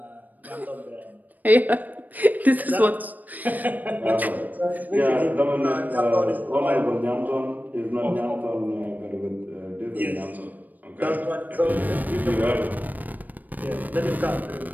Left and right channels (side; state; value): left; late; 0.084 ms